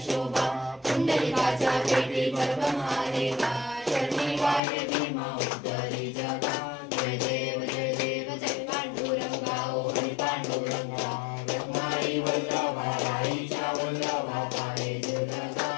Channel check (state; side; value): drops out; right; at 4.6 s